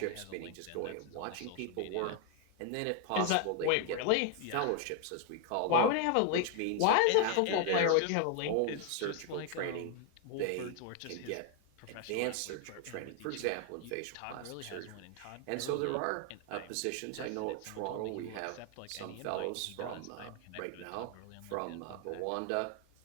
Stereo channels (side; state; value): both; different; correlation 0.01